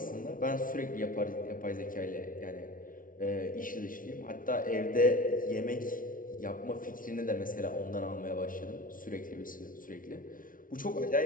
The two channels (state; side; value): late; right; 0.39 ms